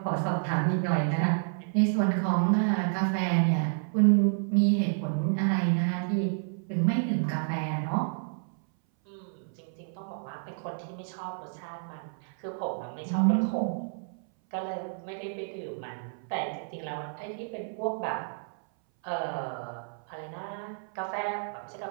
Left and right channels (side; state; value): left; silent; 58 dB below the other